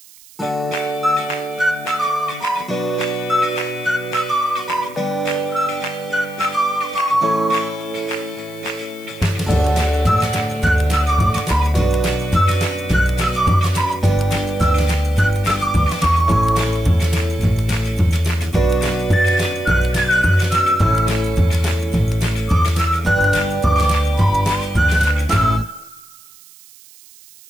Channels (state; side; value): noise; right; hiss, 24 dB below the sound